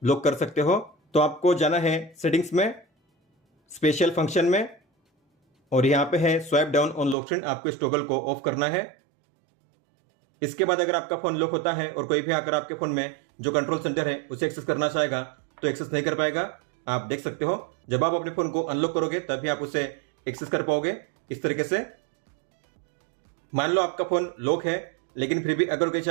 लॉक कर सकते हो। तो आपको जाना है सेटिंग्स में, स्पेशल फंक्शन में, और यहाँ पे है swipe down on lock screen, आपको इस टॉगल को ऑफ करना है। इसके बाद अगर आपका फोन लॉक होता है और कोई भी आकर आपके फोन में जो कंट्रोल सेंटर है उसे एक्सेस करना चाहेगा तो एक्सेस नहीं कर पाएगा। आप देख सकते हो जब आप अपने फोन को अनलॉक करोगे तभी आप उसे एक्सेस कर पाओगे इस तरीके से। मान लो आपका फोन लॉक है, लेकिन फिर भी अगर कोई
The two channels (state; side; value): drops out; left; at 7.2 s